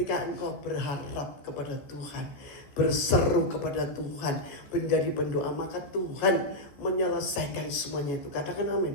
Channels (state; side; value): late; right; 14 ms